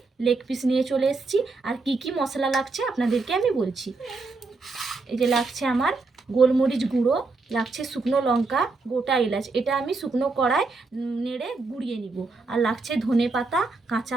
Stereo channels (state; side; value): quieter; left; 3.8 dB